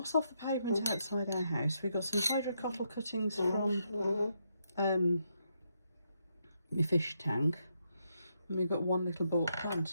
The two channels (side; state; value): both; inverted; correlation -0.78